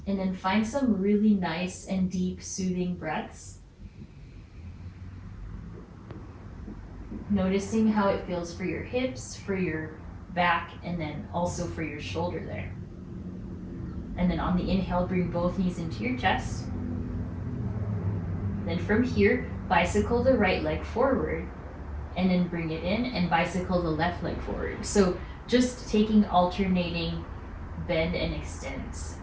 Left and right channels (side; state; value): both; identical; correlation 1.00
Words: And then find some really nice and deep soothing breaths. Noticing how it feels for your hips, for your back, and then also for your shoulder there. And then on the inhale, bring both knees into your chest. Then from here, bicycle the right leg forward, and then bring it in and bicycle the left leg forward. So just taking alternating bend and extends